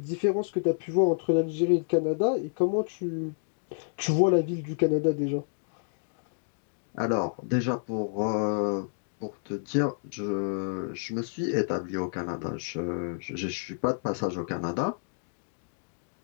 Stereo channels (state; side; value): silent; right; digital silence